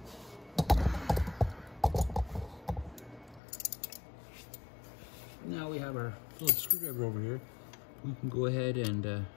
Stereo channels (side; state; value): right; drops out; at 3.4 s